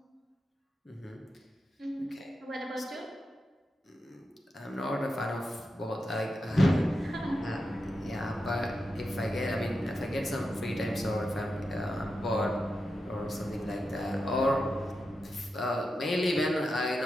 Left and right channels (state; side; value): normal; both; correlation 0.88